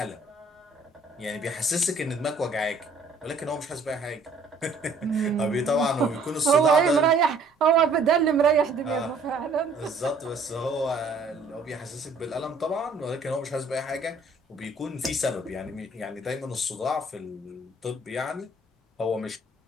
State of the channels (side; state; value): left; quieter; 3.0 dB